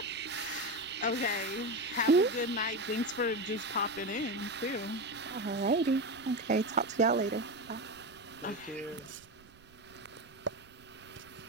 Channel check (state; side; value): noise; right; rumble, 25 dB below the sound